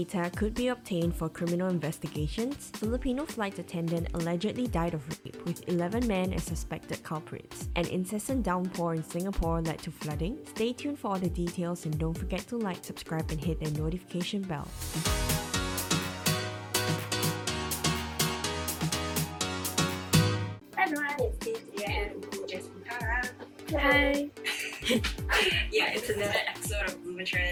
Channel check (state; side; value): identical; both; correlation 1.00